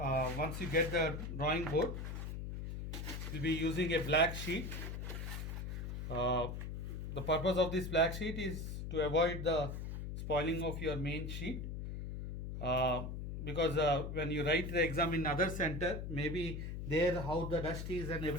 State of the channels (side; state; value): left; noise; hum, 5 dB below the sound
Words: you get the drawing board, you'll be using a black sheet. The purpose of this black sheet is to avoid the spoiling of your main sheet. Because when you write the exam in other center, maybe there how the dust is and